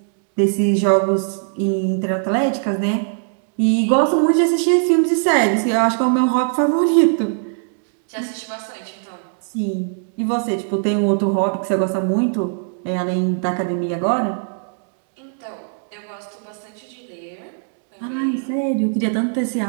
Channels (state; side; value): silent; left; digital silence